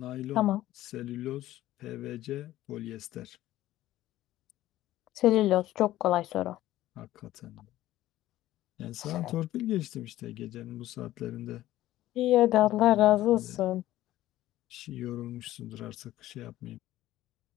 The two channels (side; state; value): right; quieter; 14.8 dB